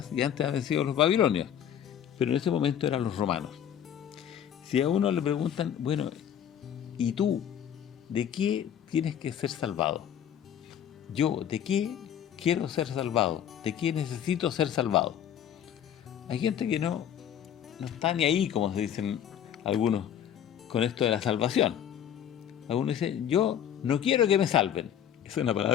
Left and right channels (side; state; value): right; quieter; 9.6 dB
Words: y antes habían sido los babilonios. Pero en ese momento eran los romanos. Si a uno le preguntan, bueno, ¿y tú de qué tienes que ser salvado? Yo, ¿de qué quiero ser salvado? ¿De qué necesito ser salvado? Hay gente que no está ni ahí, como se dicen algunos, con esto de la salvación. Algunos dicen, yo no quiero que me salven. Esa es una